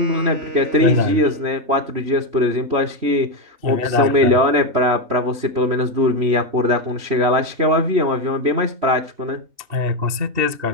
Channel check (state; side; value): late; left; 3.1 ms